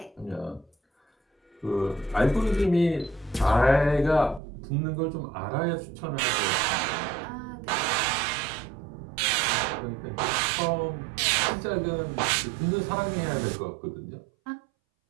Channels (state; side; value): drops out; left; at 4.4 s